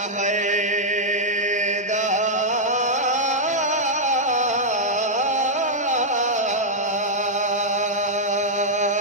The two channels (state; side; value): normal; both; correlation -0.05